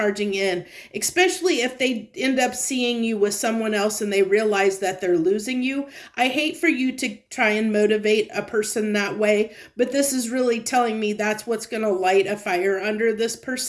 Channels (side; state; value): both; identical; correlation 1.00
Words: in, especially if they end up seeing you with someone else and they realize that they're losing you. I hate for you to try and motivate a person that way, but this is really telling me that's what's going to light a fire under this